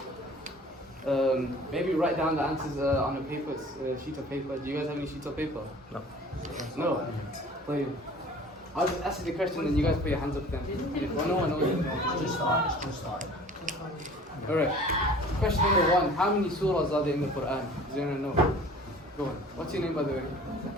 Maybe write down the answers on a paper, sheet of paper. Do you guys have any sheets of paper? No. No? Wait. I'll just ask you the question and you guys put your hands up then. Well, no one knows it. Just start. Alright. Question number 1. How many surahs are there in the Quran? Does anyone know? Go on. What's your name by the way?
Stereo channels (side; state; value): both; normal; correlation 0.47